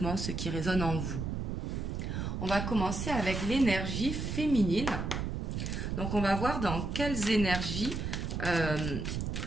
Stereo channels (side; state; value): right; noise; rumble, 3 dB below the sound